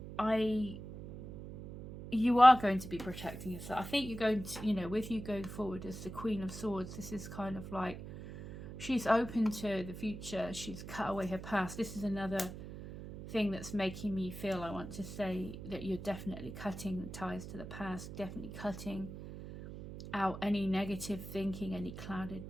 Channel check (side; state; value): right; noise; hum, 11 dB below the sound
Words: You are going to be protecting yourself. I think you're going to, you know, with you going forward as the Queen of Swords, this is kind of like she's open to the future. She's cut away her past. This is another thing that's making me feel, I want to say, that you're definitely cutting the ties to the past, definitely cutting out any negative thinking, any clouded